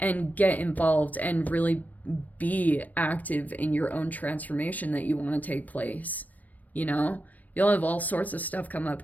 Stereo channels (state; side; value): late; right; 0.079 ms